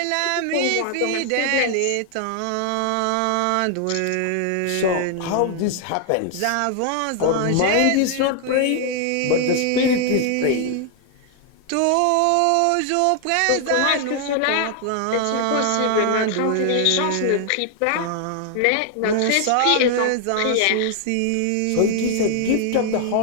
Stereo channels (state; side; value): different; both; correlation 0.00